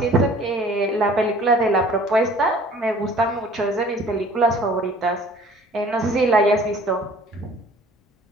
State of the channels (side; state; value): both; normal; correlation 0.51